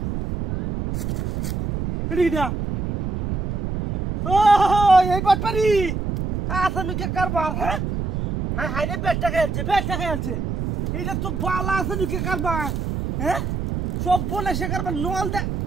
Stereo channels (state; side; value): noise; right; rumble, 2 dB below the sound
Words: রিডা ও এই বাটপারি আসামি কে কারবার। হ্যাঁ হ্যাঁ হ্যাঁ রে বেটা খেলছে এইটা তো বালা আছে কে কারবার। হ্যাঁ সব বলে সে কারবার নল দে।